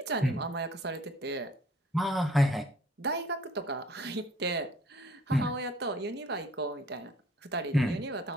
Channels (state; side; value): normal; both; correlation 0.56